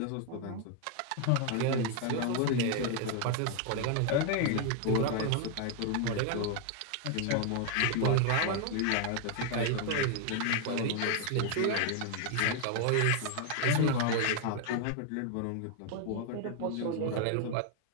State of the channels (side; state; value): both; different; correlation 0.00